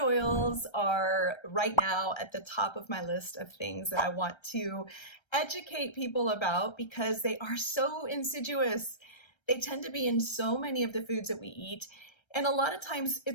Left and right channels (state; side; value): late; right; 1.3 ms